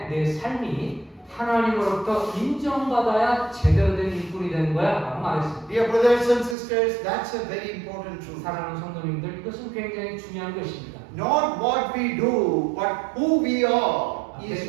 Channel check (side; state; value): left; drops out; at 6.6 s